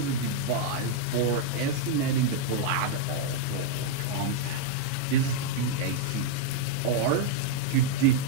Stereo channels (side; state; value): both; different; correlation -0.01